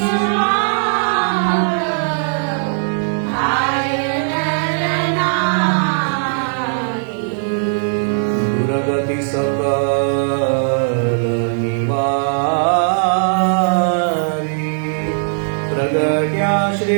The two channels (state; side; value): silent; left; digital silence